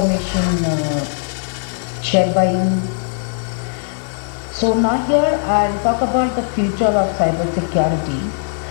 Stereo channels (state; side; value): silent; right; digital silence